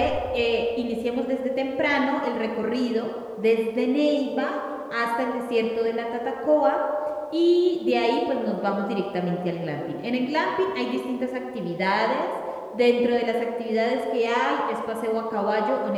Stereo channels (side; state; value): both; identical; correlation 1.00